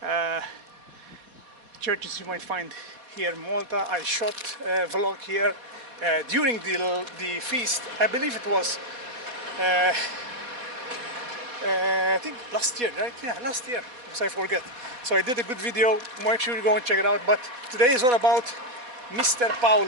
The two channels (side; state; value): left; late; 4.1 ms